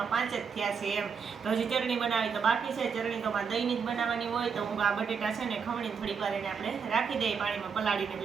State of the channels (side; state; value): left; quieter; 6.2 dB